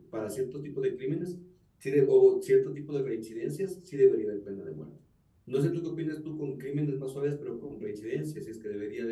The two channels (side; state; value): both; identical; correlation 1.00